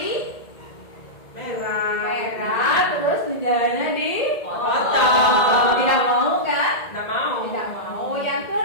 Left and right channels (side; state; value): right; late; 1.9 ms